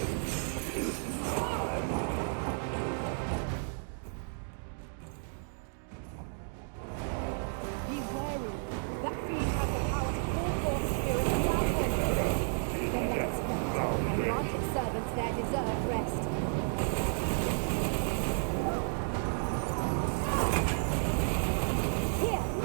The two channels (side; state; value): left; silent; 56 dB below the other